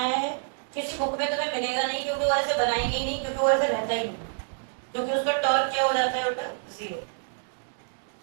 है, किसी बुक में तुम्हें मिलेगा नहीं क्योंकि वो ऐसे बनाएंगे ही नहीं, क्योंकि वो ऐसे रहता ही नहीं, क्योंकि उसका टॉर्क क्या हो जाता है बेटा 0।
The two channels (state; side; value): silent; left; digital silence